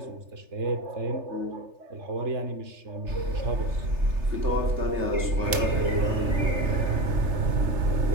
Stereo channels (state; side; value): late; left; 3.4 ms